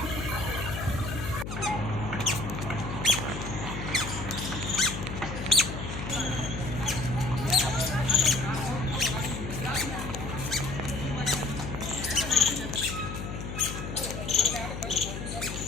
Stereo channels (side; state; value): left; noise; hum, 6 dB below the sound